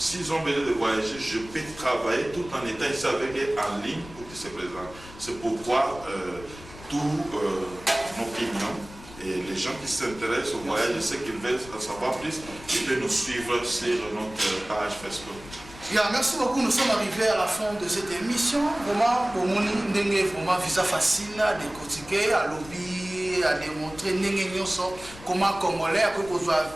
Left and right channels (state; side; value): noise; left; rumble, 18 dB below the sound